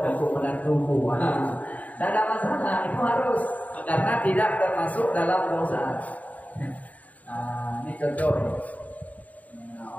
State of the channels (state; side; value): late; right; 0.072 ms